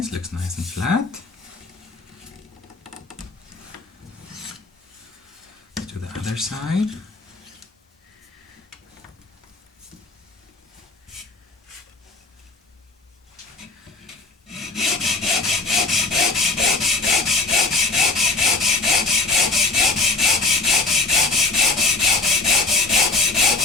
looks nice and flat. To the other side.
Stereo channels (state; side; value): quieter; right; 3.6 dB